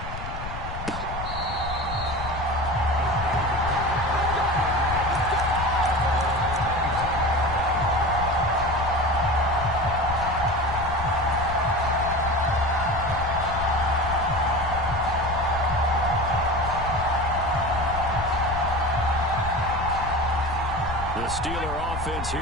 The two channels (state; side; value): noise; left; rumble, 8 dB below the sound